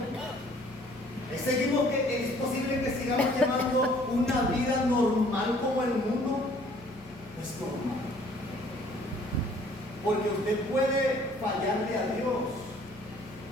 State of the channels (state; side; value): noise; left; hum, 21 dB below the sound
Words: ¿Es posible que sigamos llevando una vida normal como el mundo? No es normal. Porque usted puede fallarle a Dios.